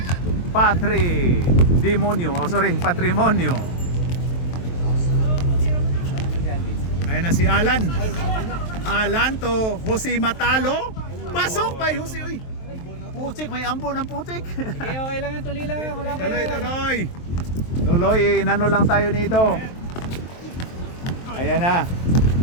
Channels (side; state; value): right; late; 23 ms